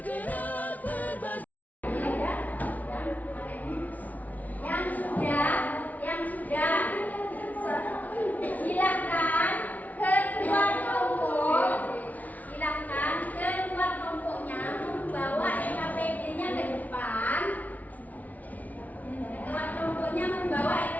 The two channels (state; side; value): late; right; 0.074 ms